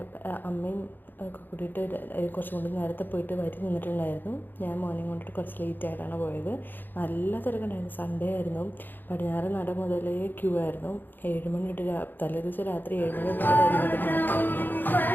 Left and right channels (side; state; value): right; late; 0.091 ms